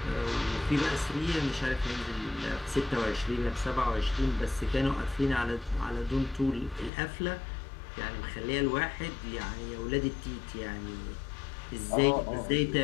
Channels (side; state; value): right; drops out; at 6.9 s